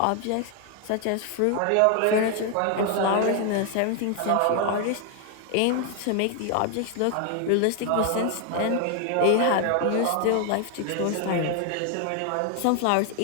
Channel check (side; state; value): both; different; correlation 0.00